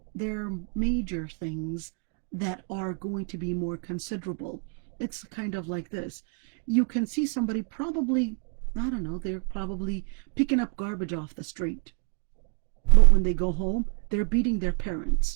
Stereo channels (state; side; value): quieter; left; 37.0 dB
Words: there are major things that are going to be more considerable. It's kind of like this. You can see somebody probably, I don't know, they're probably picking up garbage off the street. But when they go home, they're beating their